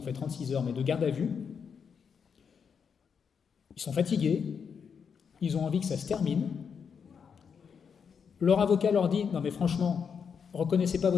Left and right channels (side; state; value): right; quieter; 6.6 dB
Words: fait 36 heures, mais de garde à vue. Ils sont fatigués, ils ont envie que ça se termine. Leur avocat leur dit « Non mais franchement, reconnaissez pas